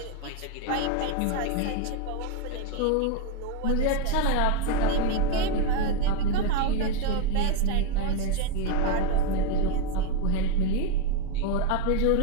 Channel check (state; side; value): different; both; correlation 0.02